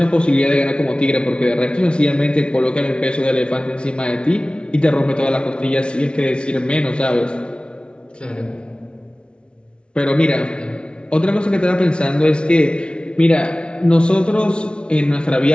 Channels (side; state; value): right; late; 0.057 ms